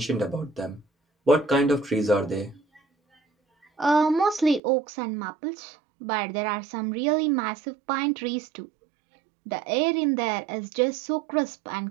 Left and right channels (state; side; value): drops out; left; at 4.6 s